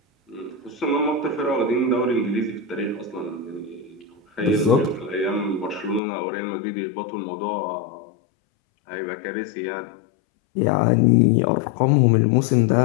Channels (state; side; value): drops out; right; at 6.0 s